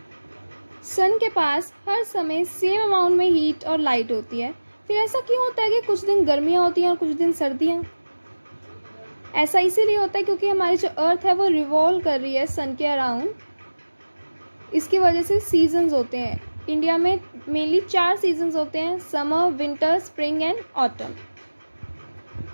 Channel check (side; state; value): both; inverted; correlation -1.00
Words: सन के पास हर समय सेम अमाउंट में हीट और लाइट होती है. फिर ऐसा क्यों होता है कि कुछ दिन गर्मियाँ होती हैं और कुछ दिन सर्दियाँ? ऐसा इसीलिए होता है क्योंकि हमारी जो अर्थ है वो रिवॉल्व कर रही है सन के अराउंड. इसकी वजह से सीजन्स होते हैं. इंडिया में मेनली 4 सीजन्स होते हैं: summer, winter, spring and autumn.